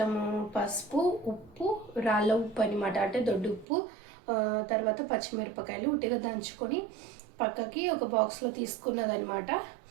పసుపు, ఉప్పు, రాళ్ళ ఉప్పు అనమాట, అంటే దొడ్డు ఉప్పు, తర్వాత పచ్చిమిరపకాయలు ఉట్టిగా దంచుకొని పక్కకి ఒక బాక్స్లో తీసుకున్నదనమాట.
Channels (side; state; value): left; drops out; at 3.7 s